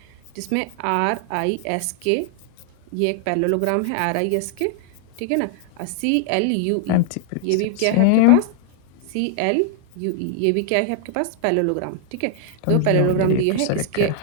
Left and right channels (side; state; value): both; different; correlation -0.01